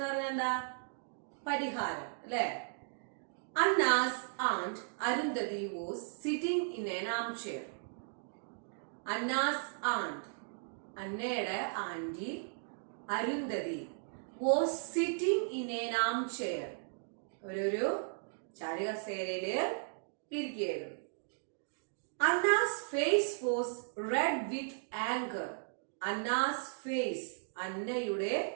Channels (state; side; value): silent; left; digital silence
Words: പറഞ്ഞാൽ എന്താ? പരിഹാരം അല്ലെ? Anna's aunt Arundhati was sitting in an armchair. Anna's aunt, അന്നയുടെ aunty Arundhati was sitting in an armchair. ഒരു ചാരുകസേരയില് ഇരിക്കുകയായിരുന്നു. Anna's face was red with anger. Anna's face, അന്നയുടെ